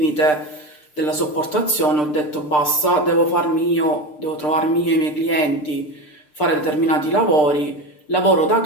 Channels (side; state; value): right; late; 6.7 ms